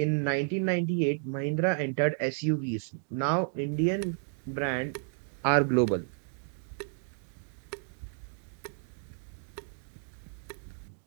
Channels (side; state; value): left; silent; 56 dB below the other